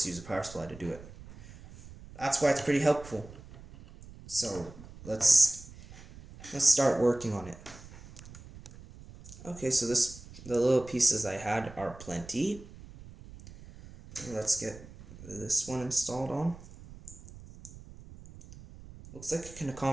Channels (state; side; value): noise; right; rumble, 17 dB below the sound